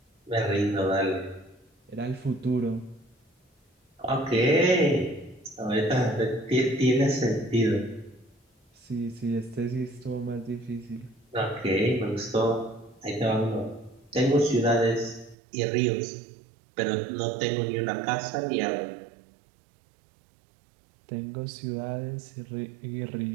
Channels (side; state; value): left; drops out; at 15.4 s